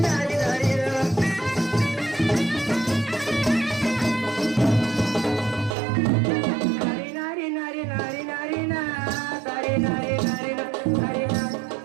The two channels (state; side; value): drops out; left; at 5.8 s